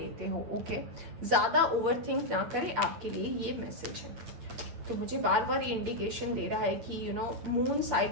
हो। ओके, ज़्यादा ओवरथिंक ना करें, आपके लिए ये मैसेज है। तो मुझे बार बार ये इंडिकेशन दे रहा है कि मून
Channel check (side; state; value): left; late; 8.7 ms